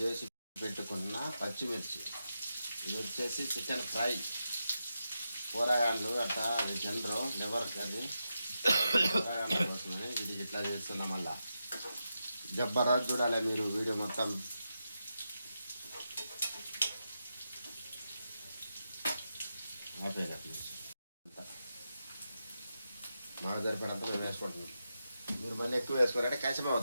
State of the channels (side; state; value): both; inverted; correlation -0.88